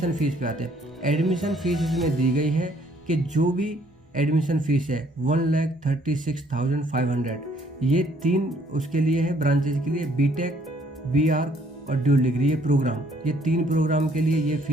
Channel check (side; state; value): both; normal; correlation 0.64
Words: फ़ीस पे आते हैं। एडमिशन फ़ीस इसमें दी गई है कि जो भी एडमिशन फ़ीस है 1,36,500, ये 3 उसके लिए है ब्रांचेज के लिए, बीटेक, बीआर और ड्यूल डिग्री, ये प्रोग्राम, ये 3 प्रोग्राम के लिए ये